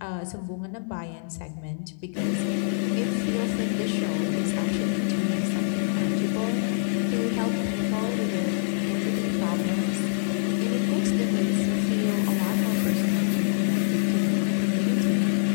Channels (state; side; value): silent; right; 58 dB below the other